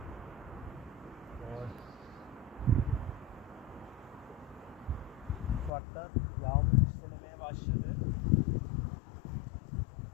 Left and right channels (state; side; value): drops out; right; at 5.7 s